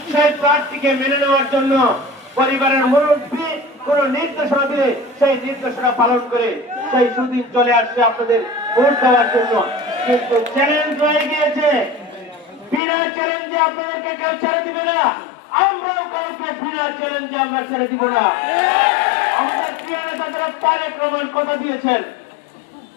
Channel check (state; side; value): drops out; right; at 12.8 s